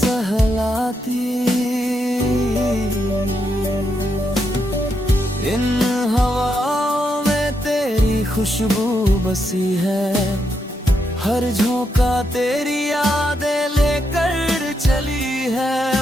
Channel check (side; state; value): both; normal; correlation 0.81